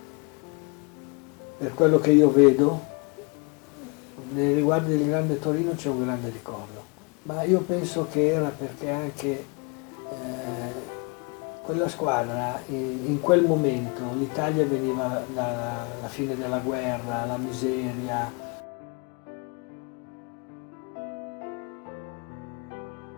per quello che io vedo, nei riguardi del Grande Torino c'è un grande ricordo. Ma io penso che era perché anche quella squadra, in quel momento, l'Italia veniva dalla fine della guerra, la miseria.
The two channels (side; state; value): right; quieter; 33.0 dB